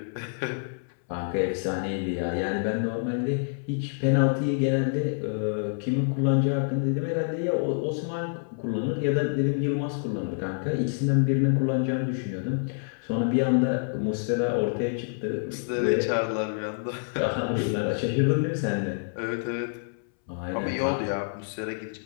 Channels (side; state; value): right; silent; 60 dB below the other